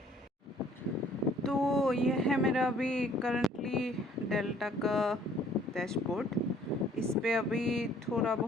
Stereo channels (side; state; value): both; normal; correlation 0.58